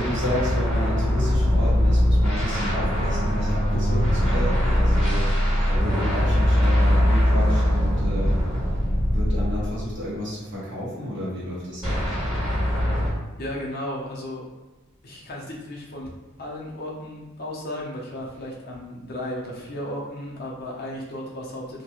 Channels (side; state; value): both; normal; correlation 0.86